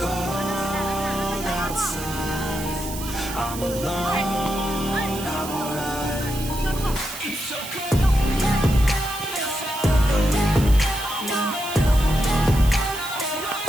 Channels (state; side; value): noise; right; hiss, 11 dB below the sound